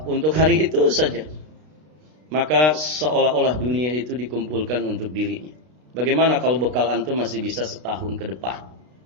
untuk hari itu saja, maka seolah-olah dunia itu dikumpulkan untuk dirinya. Bagaimana kalau bekal antum masih bisa setahun ke depan?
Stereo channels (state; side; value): late; left; 33 ms